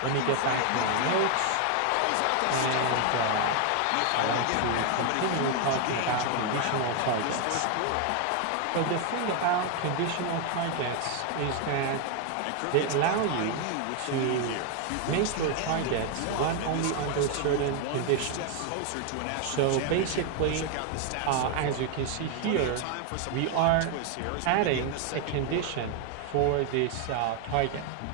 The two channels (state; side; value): different; both; correlation 0.00